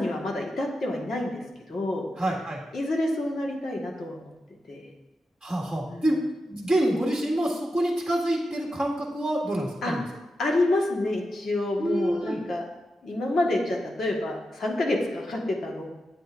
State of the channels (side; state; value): both; normal; correlation 0.89